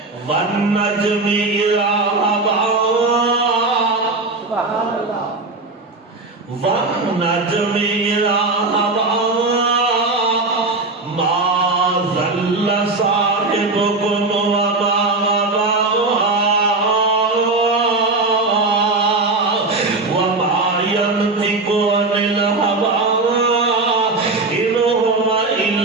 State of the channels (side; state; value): left; quieter; 3.4 dB